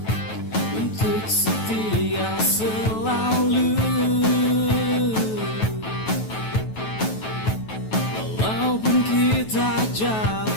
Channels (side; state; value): right; late; 9.2 ms